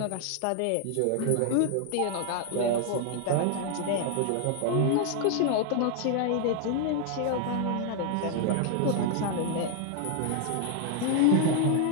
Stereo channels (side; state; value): both; different; correlation 0.00